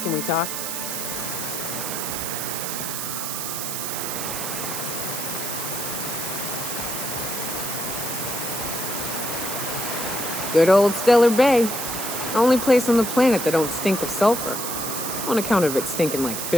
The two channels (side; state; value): right; noise; hiss, 4 dB below the sound